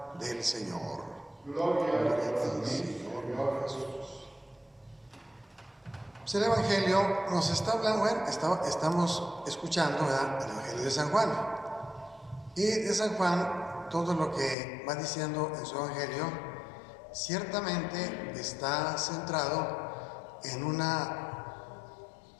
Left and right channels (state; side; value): drops out; right; at 14.6 s